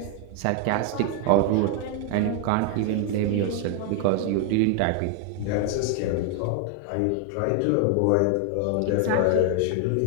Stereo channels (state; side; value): different; both; correlation 0.00